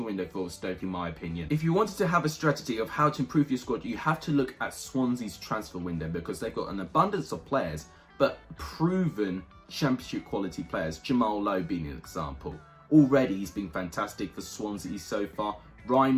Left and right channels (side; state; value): both; identical; correlation 1.00